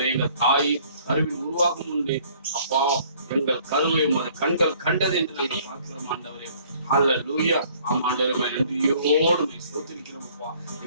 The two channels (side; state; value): both; inverted; correlation -0.58